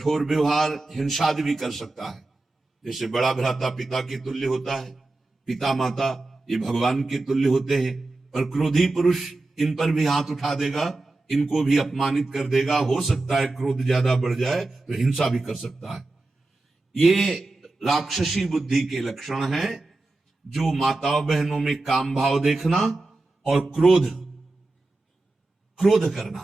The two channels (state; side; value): quieter; left; 3.1 dB